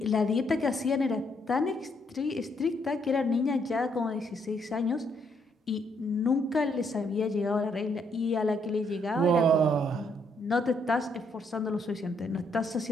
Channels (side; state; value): both; normal; correlation 0.72